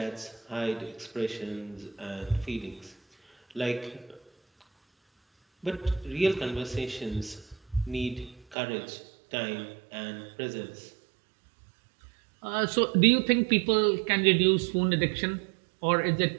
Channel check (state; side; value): drops out; left; at 8.6 s